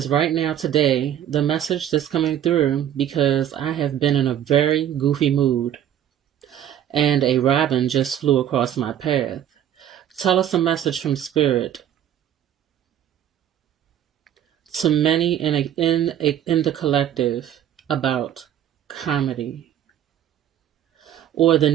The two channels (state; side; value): quieter; left; 10.5 dB